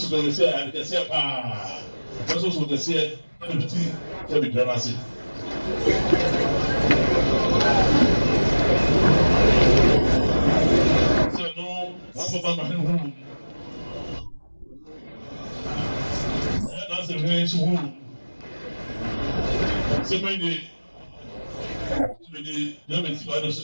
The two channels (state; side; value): inverted; both; correlation -1.00